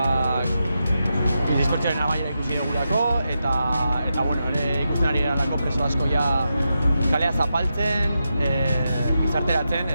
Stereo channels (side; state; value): both; inverted; correlation -0.87